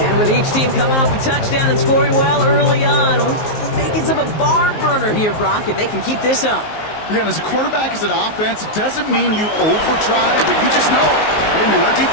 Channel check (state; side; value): late; right; 19 ms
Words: And with each team coming off a touchdown and scoring well early on, we've got the makings of a barn burner here, Brock, if they can keep this up. Yeah, and as a quarterback, as an offense, it doesn't mean you over-try, but you just know, hey, man, our